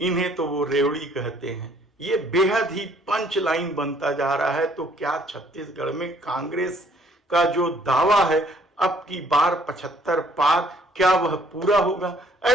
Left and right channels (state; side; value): normal; both; correlation 0.61